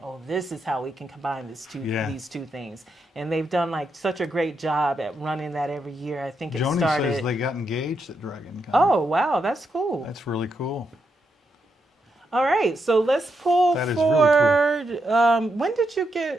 Oh, this is how we can combine these two things. And they've done like such a great job at running that every year. I think Joni started. says they got engaged at Dragon Con. Oh, wow, that's cool. That's really cool. All right, so let's pull that is forward. Really cool. When did you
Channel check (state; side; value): normal; both; correlation 0.82